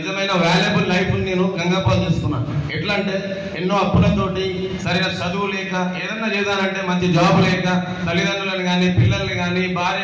వాల్యుబుల్ లైఫ్ నేను గంగపాలు చేసుకున్నా. ఎట్లా అంటే ఎన్నో అప్పులతోటి, సరైన చదువు లేక, ఏదన్నా చేద్దానంటే మంచి జాబ్ లేక, తల్లిదండ్రులను కానీ పిల్లల్ని కానీ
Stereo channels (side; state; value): both; identical; correlation 1.00